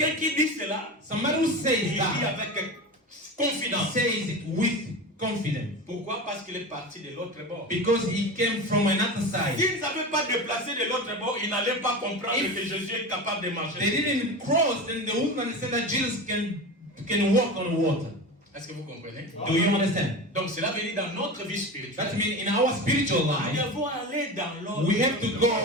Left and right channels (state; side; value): normal; both; correlation 0.27